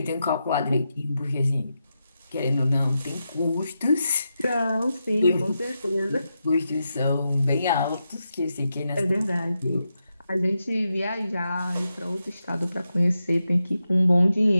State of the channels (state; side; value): inverted; both; correlation -0.87